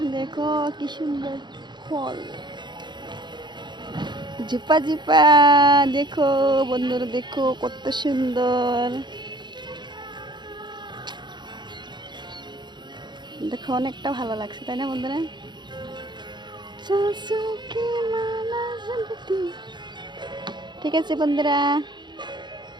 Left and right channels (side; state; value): left; late; 0.22 ms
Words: देखो কি সুন্দর ফল, ঝুপা ঝুপা। দেখো বন্ধুরা, দেখো কত সুন্দর, দেখো অনেকটা ভালো লাগছে, তাই না বন্ধুরা? ঠিক আছে বন্ধুরা,